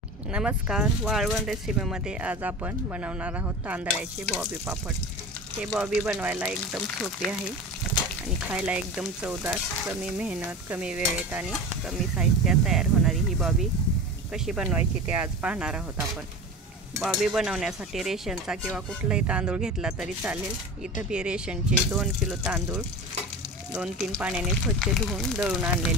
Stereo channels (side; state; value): both; normal; correlation 0.31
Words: नमस्कार, वाळवण रेसिपीमध्ये आज आपण बनवणार आहोत तांदळाचे बॉबी पापड। हे बॉबी बनवायला एकदम सोपे आहे आणि खायला एकदम चवदार, कमी मेहनत, कमी वेळेत आणि कमी साहित्यात तयार होणारी ही बॉबी कशी बनवायची ते आज पाहणार आहोत आपण। बॉबी बनवण्यासाठी रेशनचा किंवा कुठलाही तांदूळ घेतला तरी चालेल। इथं मी रेशनचे 2 किलो तांदूळ 2-3 पाण्याने स्वच्छ धुवून दळून